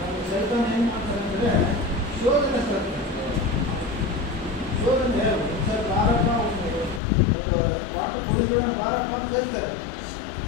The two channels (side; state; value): right; drops out; at 7.0 s